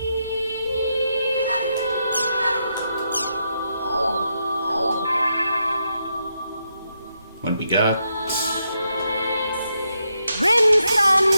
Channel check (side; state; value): both; inverted; correlation -0.82